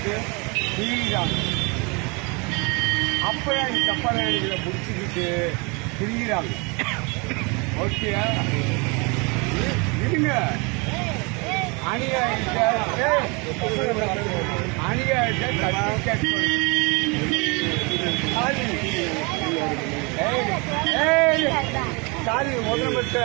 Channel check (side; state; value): left; quieter; 29.9 dB